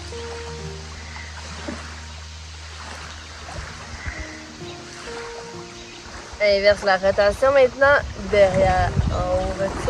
Inverse la rotation maintenant, derrière, en haut,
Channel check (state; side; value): identical; both; correlation 1.00